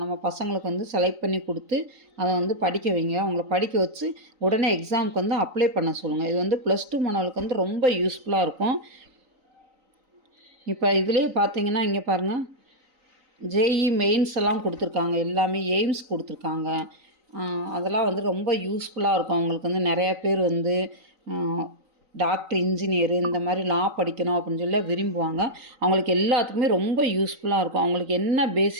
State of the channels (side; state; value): left; late; 3.9 ms